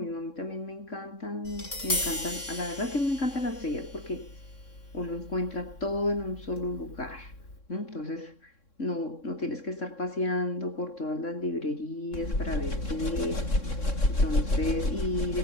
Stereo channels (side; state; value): right; late; 3.6 ms